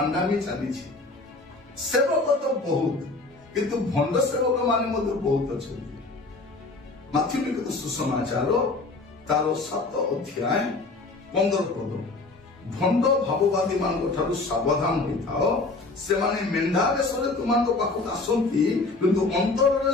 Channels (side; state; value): right; quieter; 3.4 dB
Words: ଚାଲିଛି। ସେବକ ତ ବହୁତ, କିନ୍ତୁ ଭଣ୍ଡ ସେବକ ମାନେ ମଧ୍ୟ ବହୁତ ଅଛନ୍ତି। ମାଥ୍ୟୁ ଲିଖିତ ସୁସମାଚାର ତାର 7 ଅଧ୍ୟାୟ 15 ପଦ, ଭଣ୍ଡ ଭାବବାଦୀ ମାନଙ୍କ ଠାରୁ ସାବଧାନ ହୋଇଥାଅ, ସେମାନେ ମେଣ୍ଢା ବେଶରେ ତୁମମାନଙ୍କ ପାଖକୁ ଆସନ୍ତି, କିନ୍ତୁ ଅନ୍ତରରେ